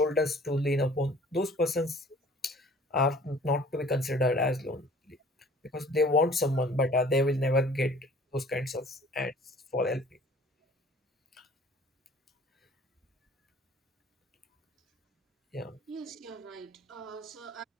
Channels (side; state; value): both; normal; correlation 0.51